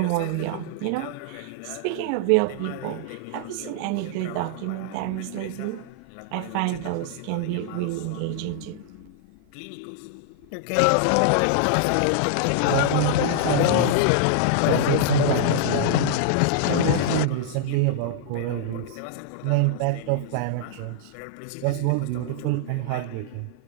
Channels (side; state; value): both; different; correlation -0.01